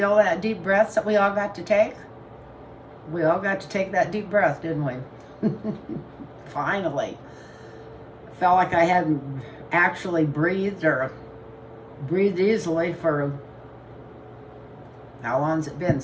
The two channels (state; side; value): identical; both; correlation 1.00